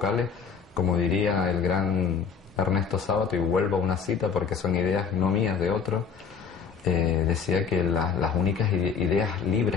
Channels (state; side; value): quieter; right; 6.3 dB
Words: como diría el gran Ernesto Sábato, y vuelvo a una cita porque son ideas no mías, de otros, decía que las únicas ideas